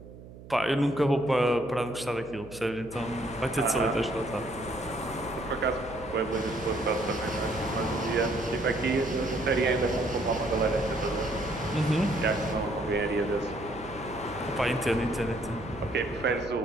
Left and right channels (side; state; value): right; noise; hum, 17 dB below the sound